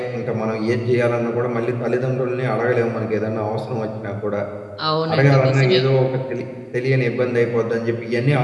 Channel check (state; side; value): identical; both; correlation 1.00